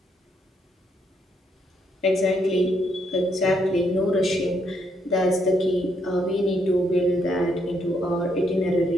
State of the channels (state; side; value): normal; both; correlation 0.74